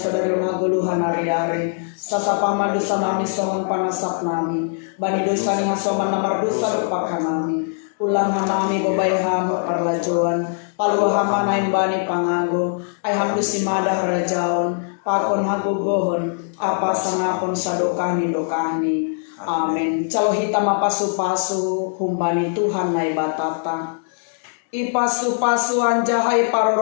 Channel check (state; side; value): silent; right; digital silence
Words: naguluhan hari-hari sasapa madusa nami songon panasak nami bani dosa ni hasoman namar dosa lupakan nami ulang nami babay hamba parlajuan palu hama nain bani pangago ay hamdu simada harajaon pakon hagugohon apa sangapon sadokani dokani amin calo hitam pasu-pasu humbani Tuhan nai batata ipasu-pasu anjahai